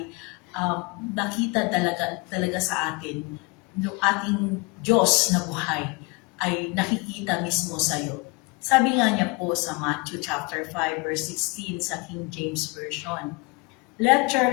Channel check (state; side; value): quieter; right; 27.4 dB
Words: nakita talaga sa atin yung ating Diyos na buhay ay nakikita mismo sa iyo. Sabi nga niya po sa Matthew chapter 5 verse 16 sa King James Version, "Let your